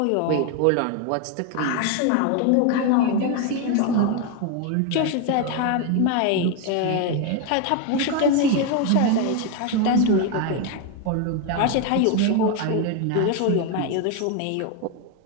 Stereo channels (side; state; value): both; different; correlation 0.01